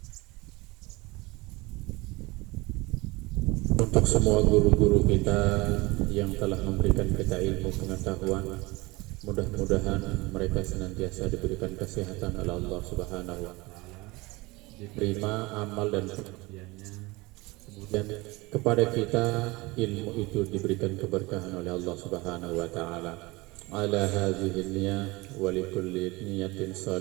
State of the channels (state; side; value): quieter; left; 23.0 dB